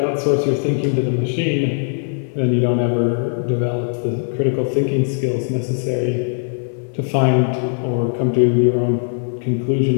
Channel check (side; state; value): right; silent; 66 dB below the other